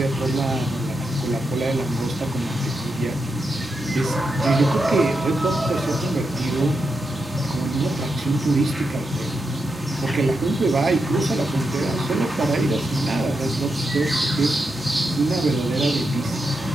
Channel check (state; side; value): normal; both; correlation 0.85